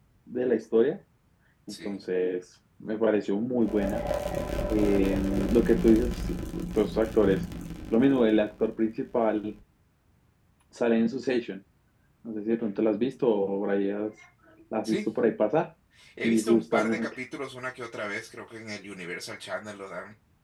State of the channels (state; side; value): identical; both; correlation 1.00